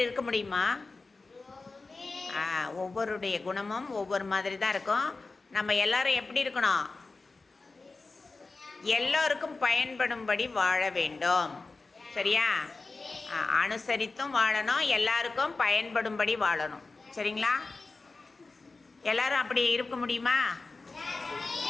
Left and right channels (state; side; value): quieter; right; 3.7 dB